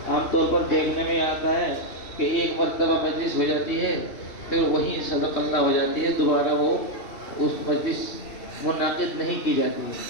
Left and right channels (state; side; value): late; right; 2.7 ms